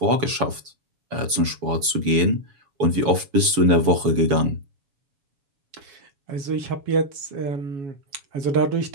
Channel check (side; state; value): left; late; 7.1 ms